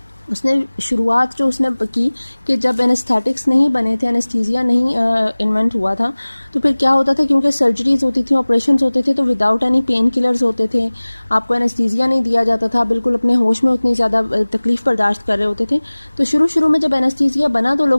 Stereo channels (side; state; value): both; inverted; correlation -1.00